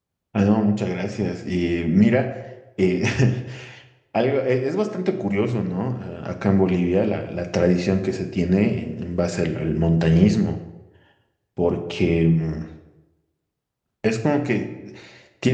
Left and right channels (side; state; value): both; identical; correlation 1.00